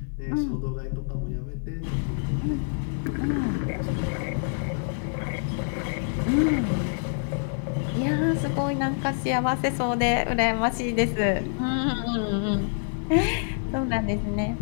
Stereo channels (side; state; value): right; silent; digital silence